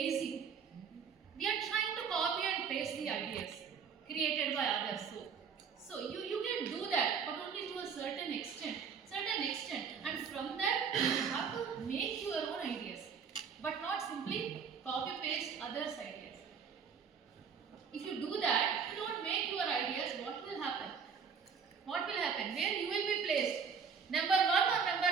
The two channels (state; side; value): quieter; left; 6.4 dB